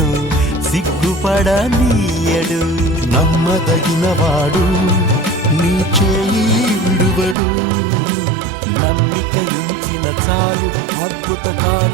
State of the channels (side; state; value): left; drops out; at 7.4 s